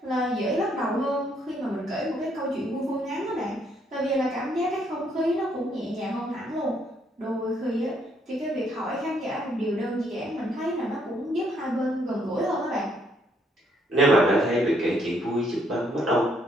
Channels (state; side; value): normal; both; correlation 0.70